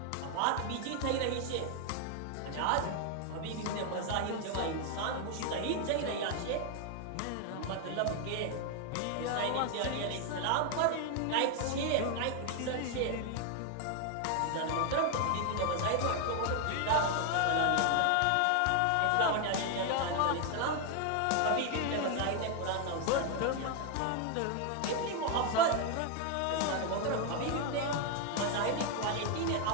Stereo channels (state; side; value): different; both; correlation 0.01